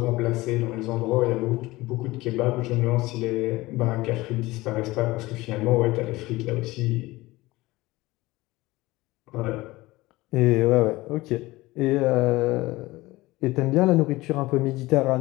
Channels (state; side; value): quieter; right; 19.8 dB